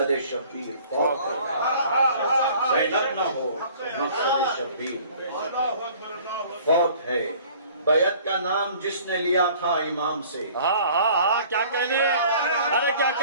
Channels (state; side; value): inverted; both; correlation -0.51